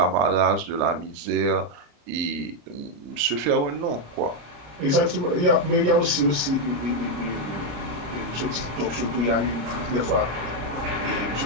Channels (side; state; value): left; late; 33 ms